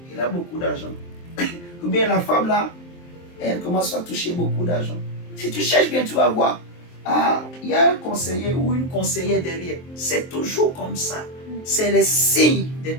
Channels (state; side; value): late; right; 23 ms